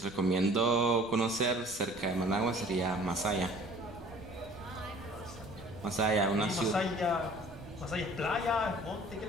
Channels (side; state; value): right; noise; rumble, 19 dB below the sound